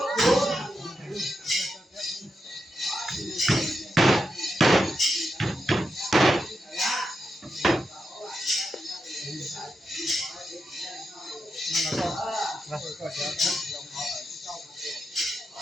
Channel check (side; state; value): both; normal; correlation 0.87